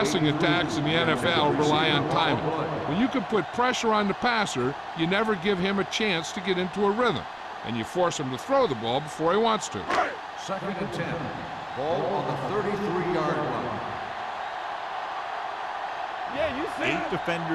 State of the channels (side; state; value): both; identical; correlation 1.00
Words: attacks in the NFL rely on timing. When you can put pressure on the passer, you never give him a chance to get into a rhythm, and you force him to throw the ball before he wants to. Second and 10. Ball on the 33-yard line. Yeah, you see. 8